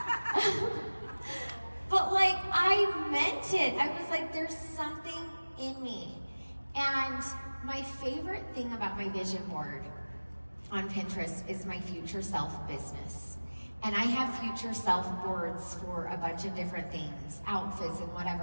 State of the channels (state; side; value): inverted; both; correlation -1.00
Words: But like, I meant it. I was like, there's something in me. And my favorite thing about my vision board on Pinterest is my future self business. And I have future self boards for a bunch of different things, outfits and